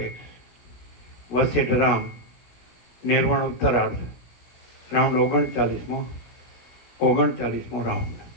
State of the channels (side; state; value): right; late; 16 ms